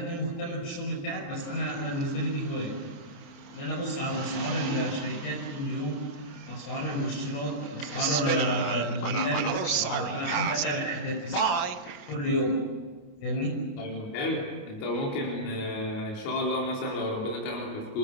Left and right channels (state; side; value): late; right; 28 ms